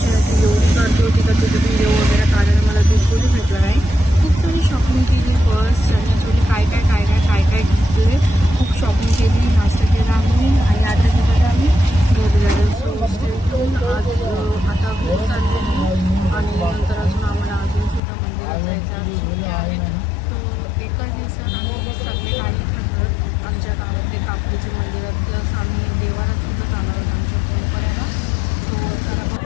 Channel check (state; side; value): drops out; right; at 18.0 s